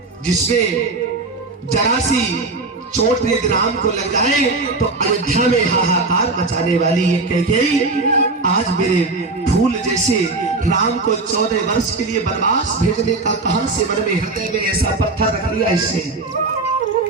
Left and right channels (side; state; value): left; quieter; 3.5 dB